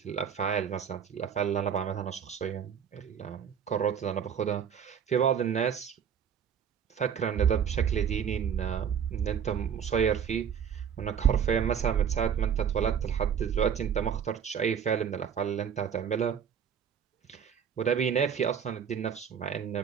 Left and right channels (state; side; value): quieter; left; 7.7 dB